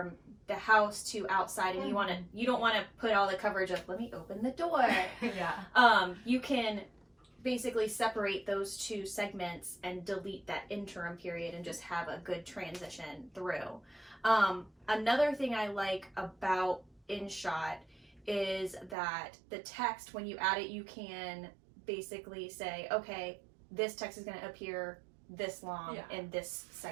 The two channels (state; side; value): drops out; left; at 18.9 s